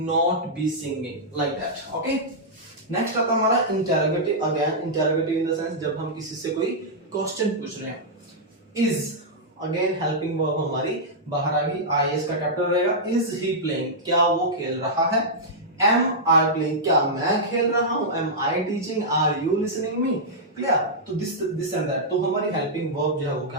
be singing, like that. Okay, next आता हमारा interrogative. Again interrogative in the sense जब हम किसी से कोई क्वेश्चन पूछ रहे हैं। इज, अगेन हेल्पिंग वर्ब हमारी बाहर आ गई, आई इसका कैपिटल रहेगा, इज ही प्लेइंग, क्या वो खेल रहा है, एम आई प्लेइंग, क्या मैं खेल रहा हूं, am I teaching, are you listening me, clear. तो दिस एंड दैट, तो हमारी हेल्पिंग वर्ब जो है वो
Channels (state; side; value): normal; both; correlation -0.09